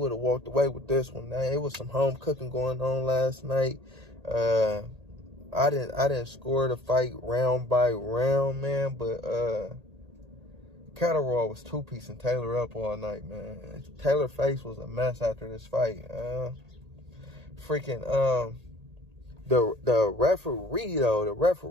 have walked away with this one. Now, it was some home cooking going on last night. I didn't score the fight round by round, man, but Catterall was two-piecing Taylor up all night, man. Taylor's face was a mess after this fight. The referee though, the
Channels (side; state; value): left; late; 1.8 ms